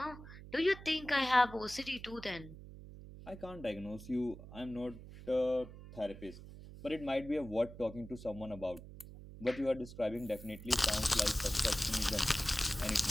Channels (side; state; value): right; noise; hum, 15 dB below the sound